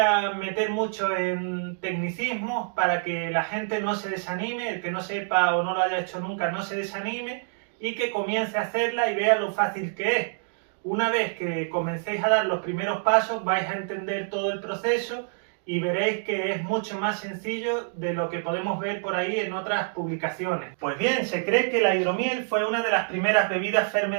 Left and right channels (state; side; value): silent; left; digital silence